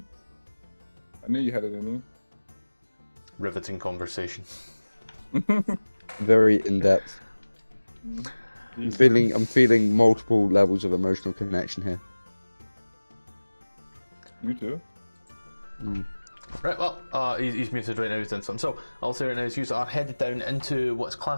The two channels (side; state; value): both; inverted; correlation -1.00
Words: I knew you had it in Riveting conversation. you. Very in depth. I'm feeling multiple levels of emotional connection here. You too. Right, well, he's muted right now, he's done something. So, I'll say right now, is you are headed down into what's